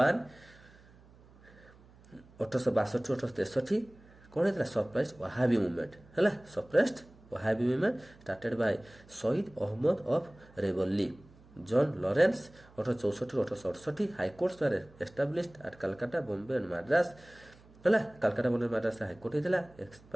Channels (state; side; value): noise; right; hum, 25 dB below the sound